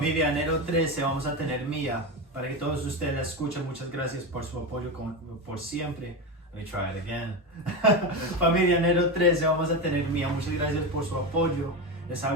Enero 13 vamos a tener Mía. Para que todos ustedes la escuchen, muchas gracias por su apoyo por siempre. Let me try it again. Familia Enero 13 vamos a tener Mía. Muchas gracias por su apoyo. Les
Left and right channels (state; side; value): normal; both; correlation 0.17